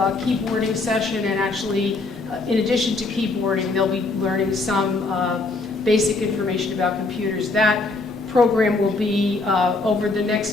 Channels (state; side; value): quieter; right; 3.5 dB